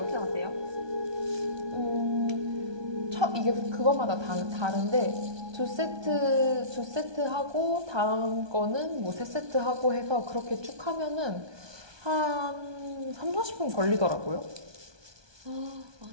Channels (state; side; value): late; left; 1.2 ms